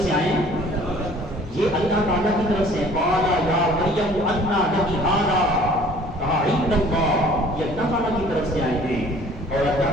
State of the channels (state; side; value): normal; both; correlation 0.52